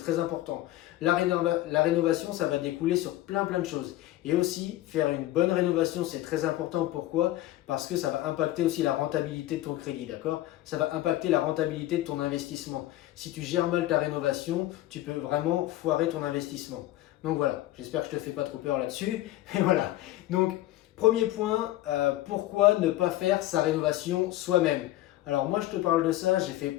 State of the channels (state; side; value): quieter; right; 15.6 dB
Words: important. La rénovation, ça va découler sur plein de choses. Et aussi, faire une bonne rénovation, c'est très important. Pourquoi? Parce que ça va impacter aussi la rentabilité de ton crédit, d'accord? Ça va impacter la rentabilité de ton investissement. Si tu gères mal ta rénovation, tu peux vraiment foirer ton investissement. Donc voilà, j'espère que je ne te fais pas trop peur là-dessus. Et voilà. Donc, premier point, pourquoi ne pas faire sa rénovation soi-même? Alors moi, je te parle de ça, j'ai fait